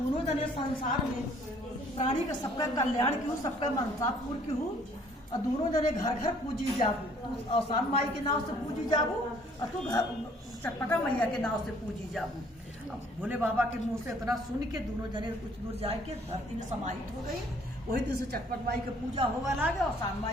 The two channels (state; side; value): normal; both; correlation 0.60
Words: जने संसार में प्राणी का सबका कल्याण की हूँ, सबका मनसा पूर्ण की हूँ, और दोनों जने घर घर पूजी जाबू। तू आसान माई के नाव से पूजी जाबू और तू चटपटा मैया के नाव से पूजी जाबू। अब भोले बाबा के मुंह से इतना सुन के दोनों जने कुछ दूर जाए के धरती में समाहित हो गई। वही दिन से चटपट माई की पूजा होगा लागे और आसान